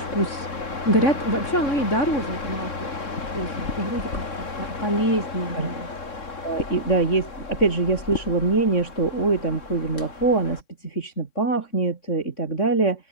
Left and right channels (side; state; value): right; late; 3.6 ms